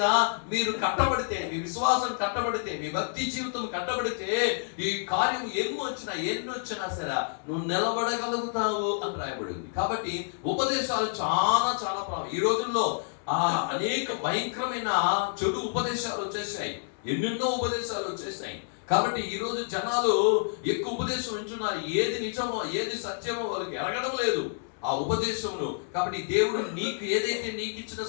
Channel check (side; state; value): right; silent; digital silence